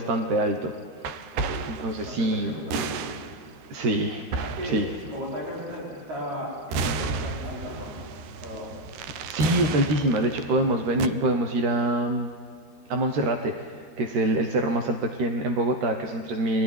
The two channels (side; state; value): left; late; 13 ms